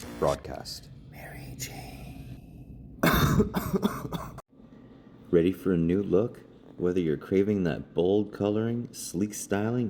Mary Jane. Ready for a new look? Whether you're craving that bold coloring, sleek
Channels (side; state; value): both; identical; correlation 1.00